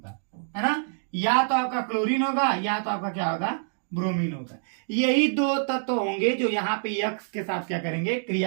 है ना? या तो आपका क्लोरीन होगा, या तो आपका क्या होगा? ब्रोमीन होगा। यही 2 तत्व होंगे जो यहाँ पे X के साथ क्या करेंगे?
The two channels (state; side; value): silent; left; digital silence